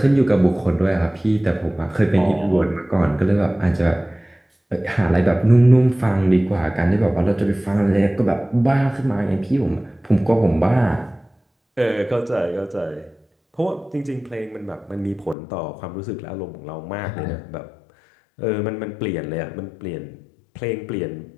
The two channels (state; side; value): drops out; right; at 15.4 s